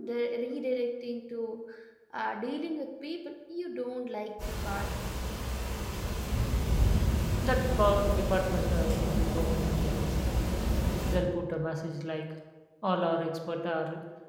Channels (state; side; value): identical; both; correlation 1.00